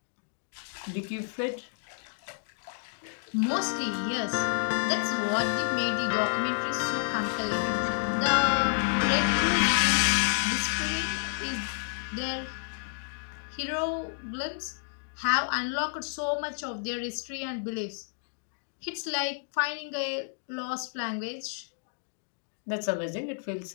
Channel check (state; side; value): silent; right; digital silence